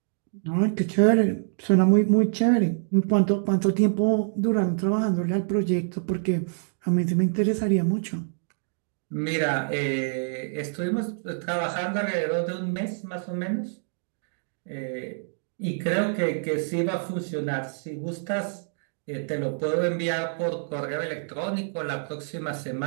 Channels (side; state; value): left; silent; digital silence